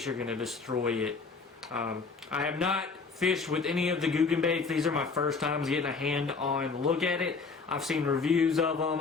are going to destroy it. I have not fished with any of the Googan baits. These are my first times getting a hand-on look at it. I've seen reviews of them.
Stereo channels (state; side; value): quieter; right; 4.6 dB